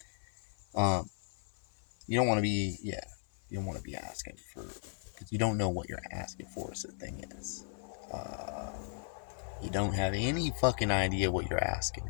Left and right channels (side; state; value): right; silent; 54 dB below the other